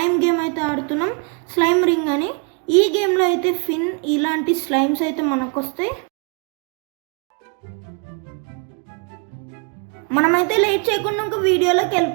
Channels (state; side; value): quieter; left; 35.8 dB